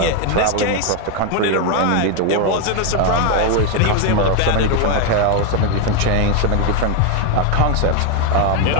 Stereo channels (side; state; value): both; different; correlation 0.01